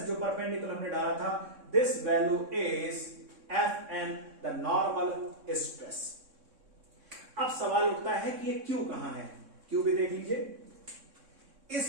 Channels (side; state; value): left; late; 3.6 ms